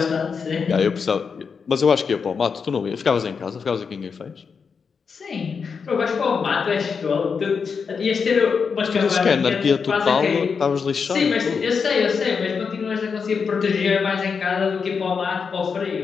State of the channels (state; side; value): quieter; right; 5.8 dB